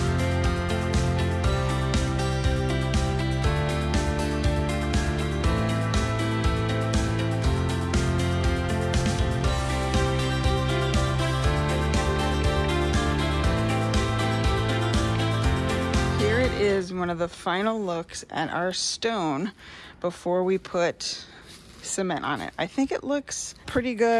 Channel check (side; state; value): both; identical; correlation 1.00